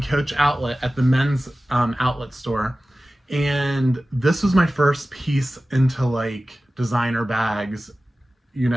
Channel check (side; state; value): both; normal; correlation 0.96